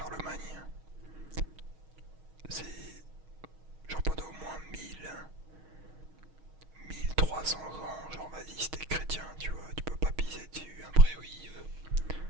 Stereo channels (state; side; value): late; left; 6.4 ms